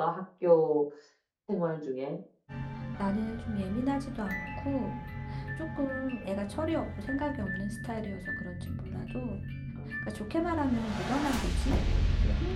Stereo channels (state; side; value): identical; both; correlation 1.00